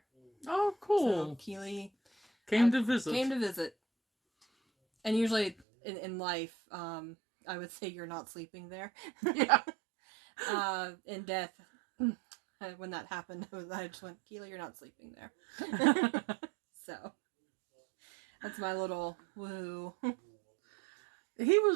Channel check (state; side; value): drops out; left; at 5.6 s